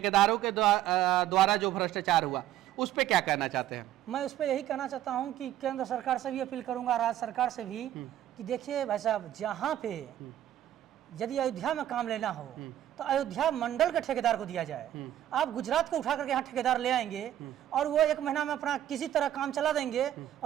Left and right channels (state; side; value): quieter; left; 12.2 dB